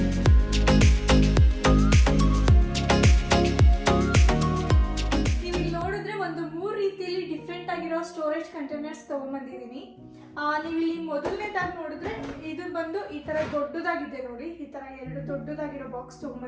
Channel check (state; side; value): identical; both; correlation 1.00